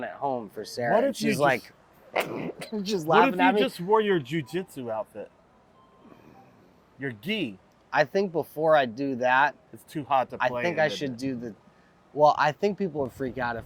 at home for Sarah. What And if you she's just- like, just What laughing if at you me. just wore your jujitsu outfit? Your gi. I think before I do that, It's too hot to I play. think in I the- should do well, I think people would freak out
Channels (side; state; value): both; identical; correlation 1.00